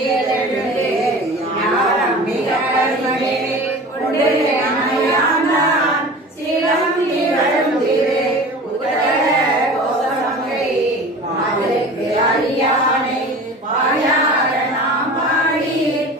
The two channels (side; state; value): both; normal; correlation 0.38